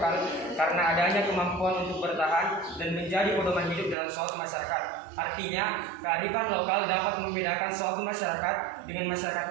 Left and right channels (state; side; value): drops out; left; at 4.0 s